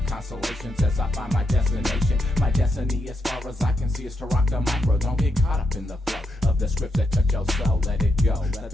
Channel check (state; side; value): normal; both; correlation 0.82